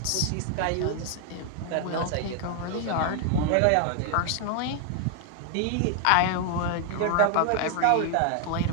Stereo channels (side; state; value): both; different; correlation 0.00